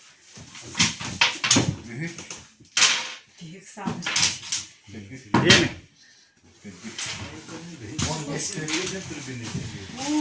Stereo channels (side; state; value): both; identical; correlation 1.00